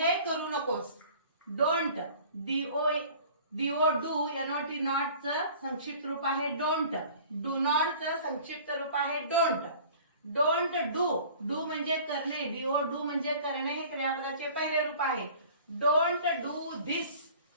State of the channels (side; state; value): both; inverted; correlation -0.47